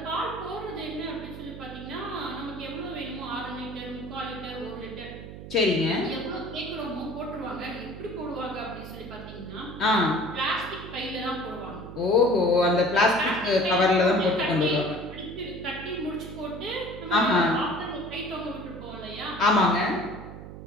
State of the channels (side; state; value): right; noise; hum, 12 dB below the sound